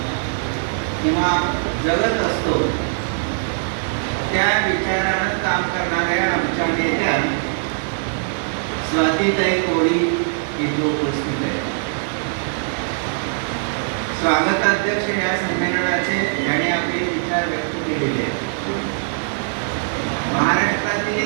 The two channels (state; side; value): silent; left; digital silence